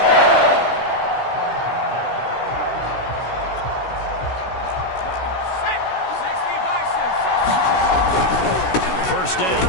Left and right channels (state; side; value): late; right; 16 ms